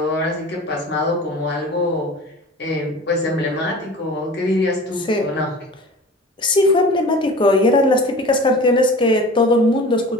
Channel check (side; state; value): both; normal; correlation 0.39